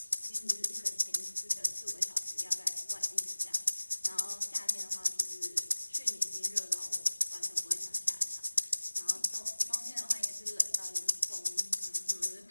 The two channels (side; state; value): both; inverted; correlation -1.00